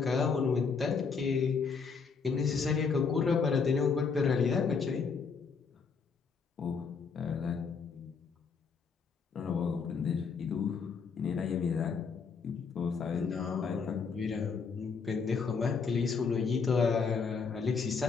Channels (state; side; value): quieter; right; 5.5 dB